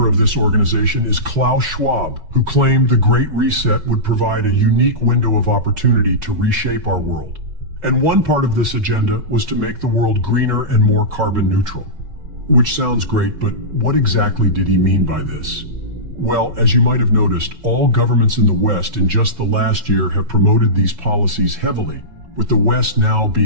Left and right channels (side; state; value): left; late; 5.3 ms